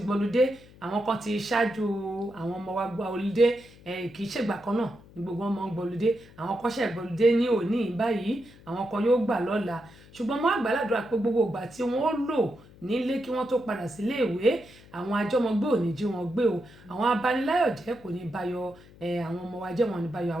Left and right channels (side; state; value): left; noise; hum, 23 dB below the sound